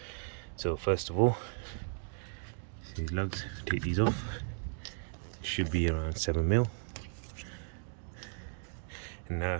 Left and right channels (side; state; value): left; silent; 54 dB below the other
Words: So first of all, see these lugs, take these off. Should be around 7 mil. And now I'll